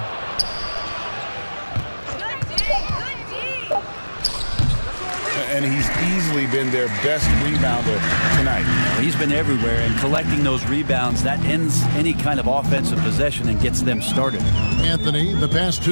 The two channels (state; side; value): inverted; both; correlation -1.00